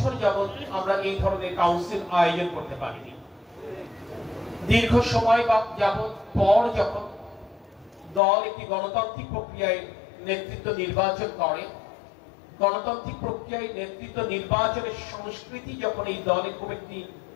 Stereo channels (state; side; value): drops out; right; at 8.2 s